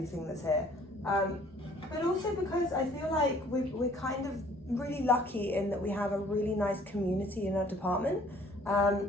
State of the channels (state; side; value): normal; both; correlation 0.57